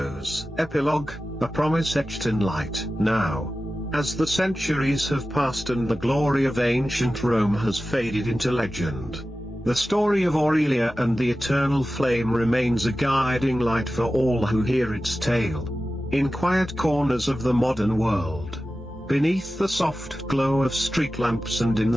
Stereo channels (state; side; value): normal; both; correlation 0.94